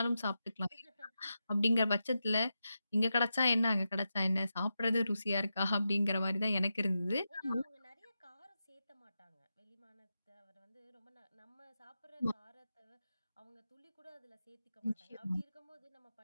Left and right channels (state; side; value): inverted; both; correlation -0.89